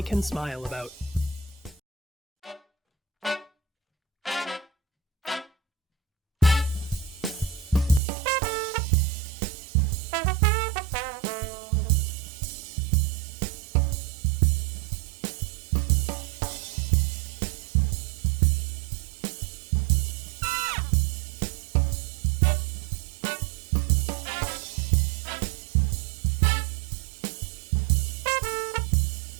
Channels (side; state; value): left; drops out; at 8.0 s